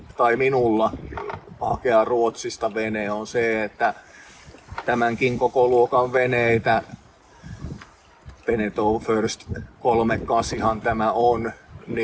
tai minulla hakea Ruotsista vene on se, että tämänkin koko luokan veneitä, Beneteau First 38 tämä on,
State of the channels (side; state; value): both; identical; correlation 1.00